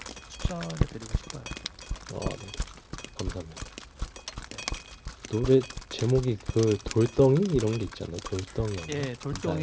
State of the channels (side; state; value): both; identical; correlation 1.00